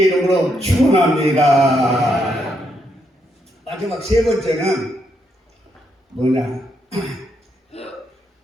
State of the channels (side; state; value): both; normal; correlation 0.78